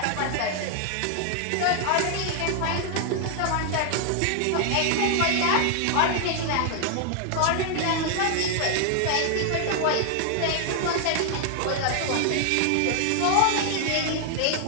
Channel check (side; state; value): both; different; correlation 0.00